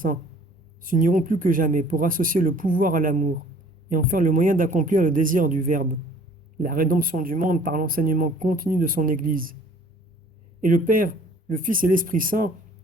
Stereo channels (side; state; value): both; normal; correlation 0.53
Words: s'uniront plus que jamais pour associer le pouvoir à l'amour et en faire le moyen d'accomplir le désir du Verbe, la rédemption du monde par l'enseignement continu de son Église. Et le Père, le Fils et l'Esprit Saint